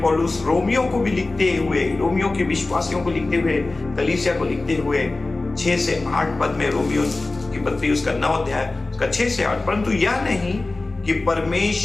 पौलुस रोमियो को भी लिखते हुए, रोमियो के विश्वासियों को लिखते हुए, कलीसिया को लिखते हुए 6 से 8 पद में, रोमियो की पत्री उसका 9 अध्याय उसका 6 से 8, परंतु यह नहीं कि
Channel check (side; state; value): right; quieter; 3.2 dB